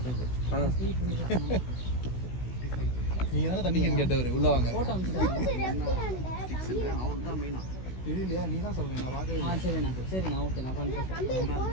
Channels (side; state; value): right; late; 16 ms